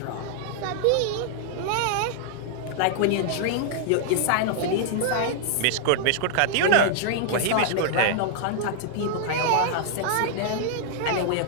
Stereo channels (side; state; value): both; different; correlation -0.01